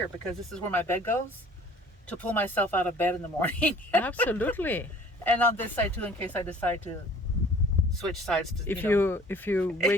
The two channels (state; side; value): normal; both; correlation 0.51